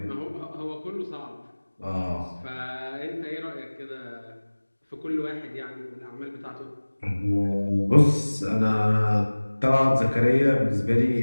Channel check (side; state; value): both; inverted; correlation -1.00